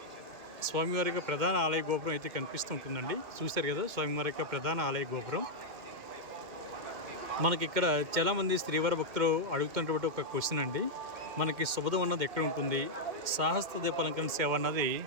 స్వామివారి యొక్క ప్రధాన ఆలయ గోపురం అయితే కనిపిస్తూ ఉంటుందండి. చూశారు కదా స్వామివారి యొక్క ప్రధాన ఆలయ గోపురం. మనకి ఇక్కడ చాలామంది శ్రీవారి భక్తులు అడుగుతున్నటువంటి ఒక క్వశ్చన్ అండి, మనకి శుభదం అన్నది ఎక్కడ ఉంటుంది, సాహస్ర దీపాలంకరణ సేవ అన్నది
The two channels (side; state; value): left; late; 2.1 ms